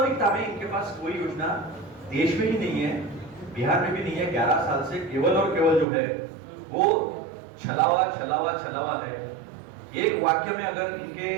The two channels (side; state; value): left; drops out; at 5.9 s